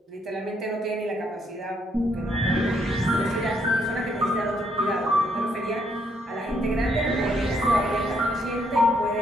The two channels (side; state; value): both; normal; correlation 0.73